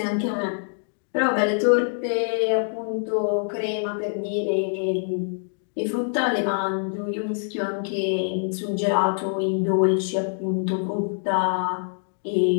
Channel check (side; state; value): right; silent; digital silence